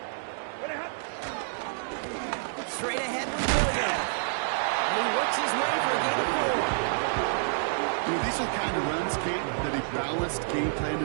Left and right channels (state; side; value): silent; left; digital silence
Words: Straight ahead with Williams. And he works his way for a gain of 4. You know, these are the kind of runs, Kate, that a balanced game plan